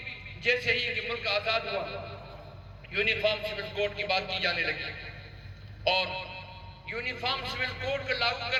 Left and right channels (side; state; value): both; identical; correlation 1.00